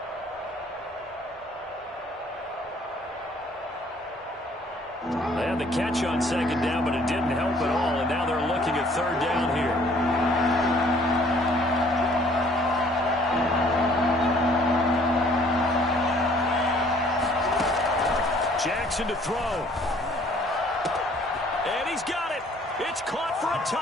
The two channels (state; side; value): normal; both; correlation 0.58